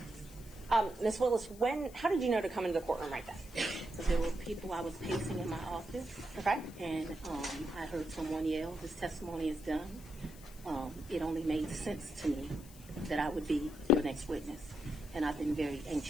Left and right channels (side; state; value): left; noise; hiss, 20 dB below the sound